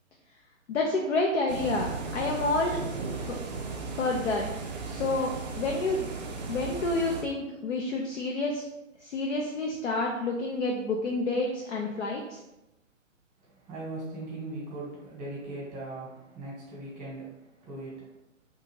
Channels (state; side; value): normal; both; correlation 0.17